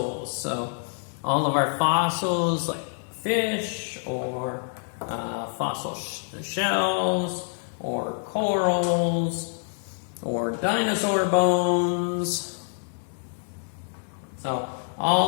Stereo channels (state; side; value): silent; right; 60 dB below the other